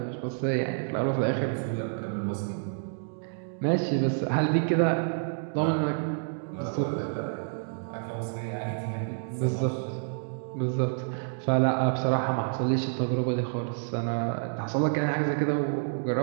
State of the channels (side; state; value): left; silent; digital silence